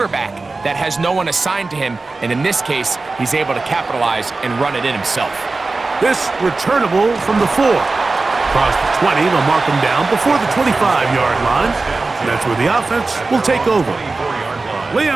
that has no one assigned to him, and in this case, he's able to capitalize and run it in himself. This returnable from the 4. Across the 20, they'll mark him down before the 25-yard line. And that's where the offense will take over.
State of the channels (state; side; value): quieter; left; 3.6 dB